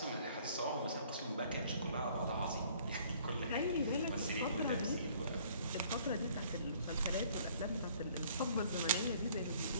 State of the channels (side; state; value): both; inverted; correlation -0.58